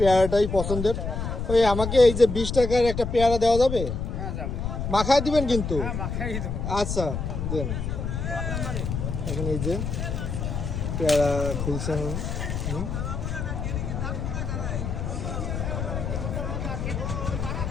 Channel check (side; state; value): left; noise; rumble, 3 dB below the sound